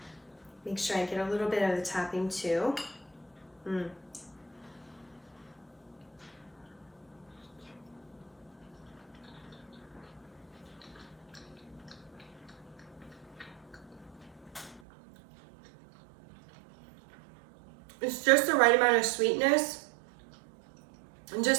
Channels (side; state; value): left; drops out; at 14.8 s